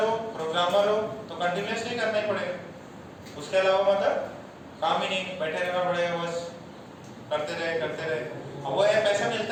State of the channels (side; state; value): both; identical; correlation 1.00